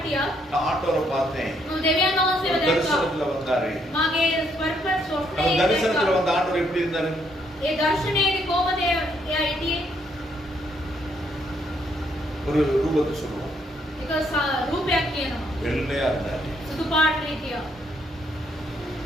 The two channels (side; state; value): both; normal; correlation 0.71